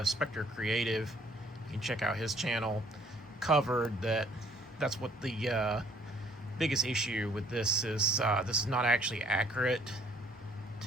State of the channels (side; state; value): both; normal; correlation 0.60